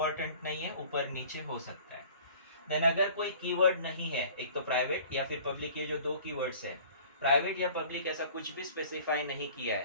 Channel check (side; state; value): both; inverted; correlation -0.48